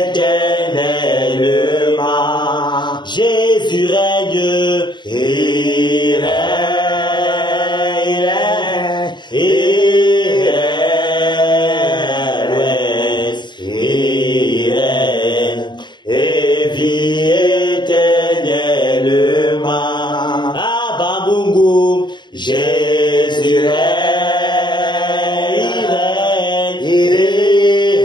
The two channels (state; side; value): late; right; 0.22 ms